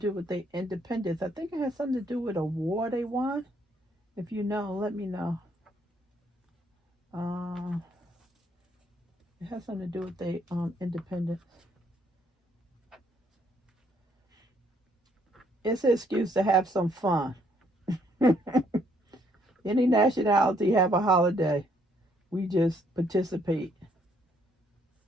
with the independence. I think it has something to do with a war they won. If you know, let me know. It has something to do with the independence. It's an excuse to have some fun. Any nationality have a holiday. We just participate.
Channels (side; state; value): both; normal; correlation 0.68